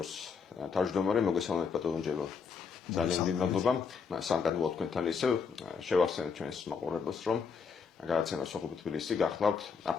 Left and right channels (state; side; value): quieter; right; 5.7 dB